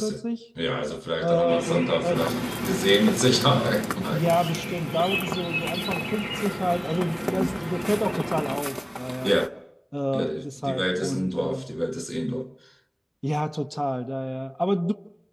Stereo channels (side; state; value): both; identical; correlation 1.00